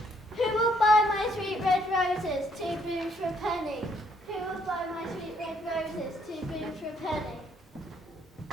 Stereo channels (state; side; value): normal; both; correlation 0.68